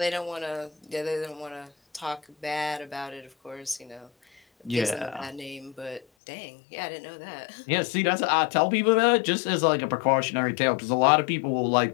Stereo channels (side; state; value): right; drops out; at 6.1 s